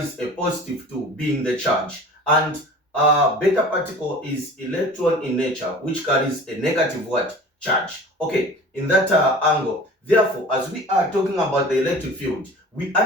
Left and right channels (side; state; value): both; normal; correlation 0.41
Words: a positive 2 being the charge, and beta particle is electron in nature which carries a negative charge. Okay, in that angle, therefore, as we are talking about the electric field, we